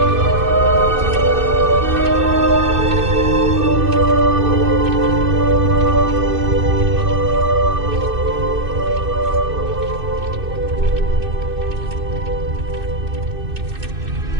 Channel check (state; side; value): late; left; 2.6 ms